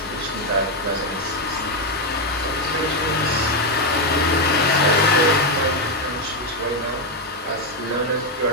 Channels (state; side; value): normal; both; correlation 0.05